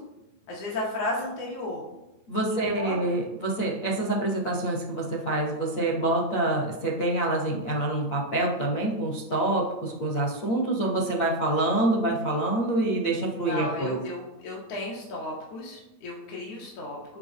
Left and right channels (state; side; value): late; right; 8.7 ms